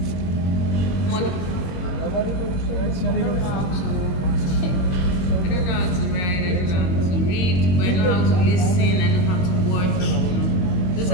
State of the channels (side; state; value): right; late; 22 ms